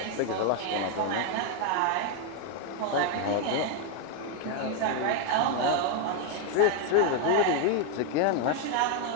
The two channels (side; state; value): both; different; correlation 0.01